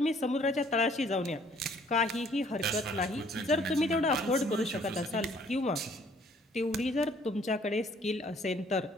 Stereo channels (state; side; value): normal; both; correlation 0.60